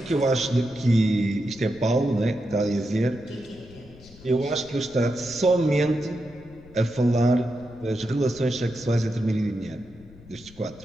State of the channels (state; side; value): noise; left; rumble, 22 dB below the sound